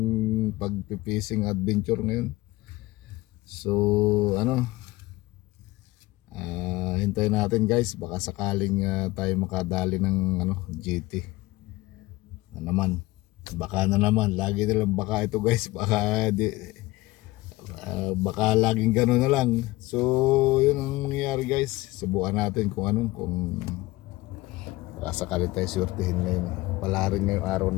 pag-fishing adventure ngayon. So hintayin natin guys, baka sakaling tayo makadali ng GT na naman. Baka na naman, lagi nilang baka ito guys, baka laging gano'n na lang. So yun ang nangyayari guys, subukan natin kung baka sakali tayo surtihin ngayon. Pala rin ngayong araw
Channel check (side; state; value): right; quieter; 19.5 dB